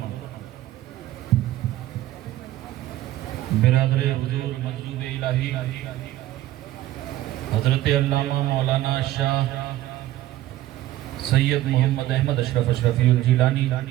برادر حضور منصوب الہی حضرت علامہ مولانا شاہ سید محمد احمد اشرف اشرفی الجیلانی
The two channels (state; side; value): quieter; left; 14.7 dB